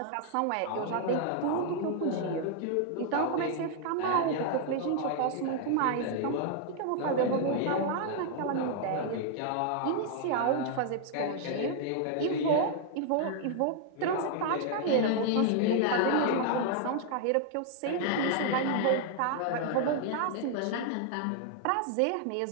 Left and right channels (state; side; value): different; both; correlation 0.00